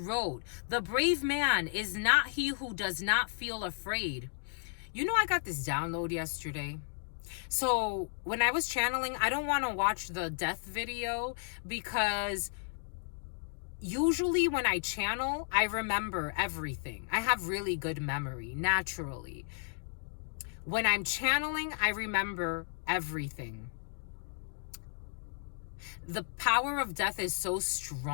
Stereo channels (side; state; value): right; silent; digital silence